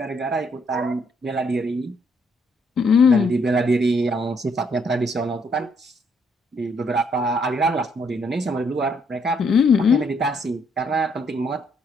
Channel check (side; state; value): both; normal; correlation 0.71